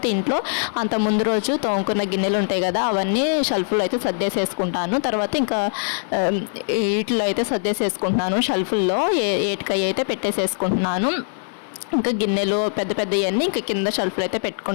ఇంట్లో అంత ముందు రోజు తోముకున్న గిన్నెలు ఉంటాయి కదా, అవన్నీ షెల్ఫ్లో అయితే సర్దేసేసుకుంటాను. తర్వాత ఇంకా వీటిలో అయితే సర్దేసేసుకుంటున్నాను. షెల్ఫ్ల్లో ఏటికై అయితే పెట్టేసేసుకుంటున్నాను. ఇంకా గిన్నెలు పెద్ద పెద్దవన్నీ ఇంకా కింద షెల్ఫ్లో అయితే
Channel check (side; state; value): right; silent; 64 dB below the other